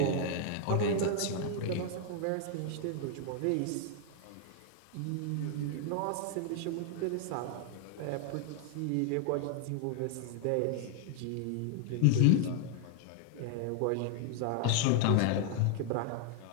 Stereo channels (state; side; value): different; both; correlation 0.00